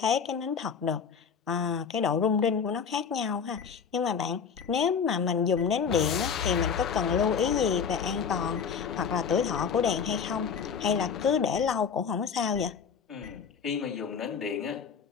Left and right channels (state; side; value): quieter; right; 6.6 dB